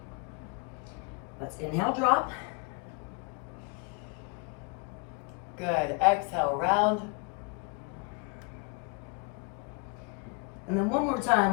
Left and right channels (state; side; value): quieter; right; 31.7 dB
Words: Let's inhale, drop. Good, exhale, round. And then one more